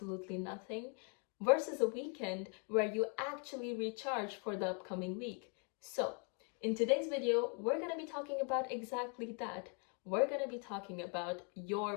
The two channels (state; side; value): quieter; right; 36.1 dB